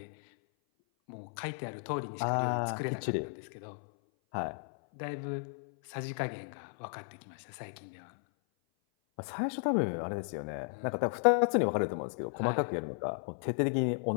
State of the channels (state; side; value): silent; right; 55 dB below the other